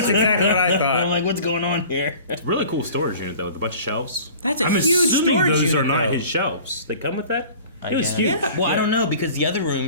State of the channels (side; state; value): both; inverted; correlation -0.45